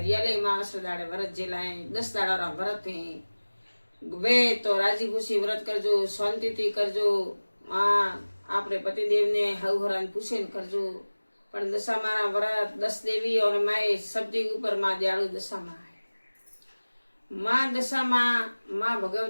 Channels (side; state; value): both; inverted; correlation -1.00